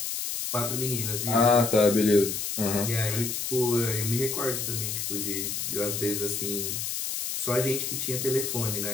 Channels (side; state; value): left; noise; hiss, 3 dB below the sound